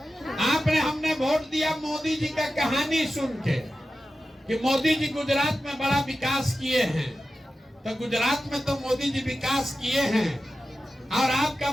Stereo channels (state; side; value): normal; both; correlation 0.93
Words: हमने वोट दिया मोदी जी का कहानी सुन के कि मोदी जी गुजरात में बड़ा विकास किए हैं। तो गुजरात में तो मोदी जी विकास किए हैं, और आपका